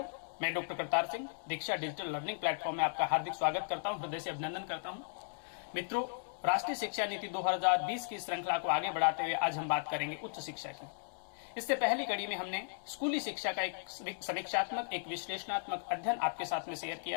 मैं डॉक्टर करतार सिंह दीक्षा डिजिटल लर्निंग प्लेटफॉर्म में आपका हार्दिक स्वागत करता हूं, हृदय से अभिनंदन करता हूं। मित्रों, राष्ट्रीय शिक्षा नीति 2020 की श्रृंखला को आगे बढ़ाते हुए आज हम बात करेंगे उच्च शिक्षा की। इससे पहली कड़ी में हमने स्कूली शिक्षा का एक समीक्षात्मक, एक विश्लेषणात्मक अध्ययन आपके साथ में शेयर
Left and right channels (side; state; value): right; silent; digital silence